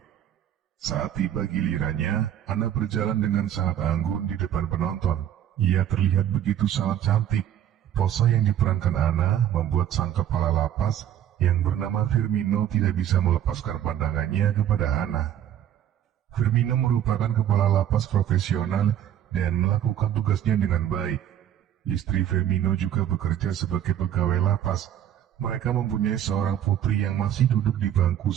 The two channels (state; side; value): quieter; left; 10.5 dB